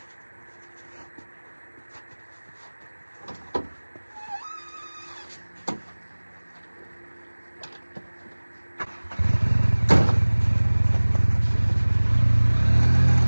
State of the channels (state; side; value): inverted; both; correlation -1.00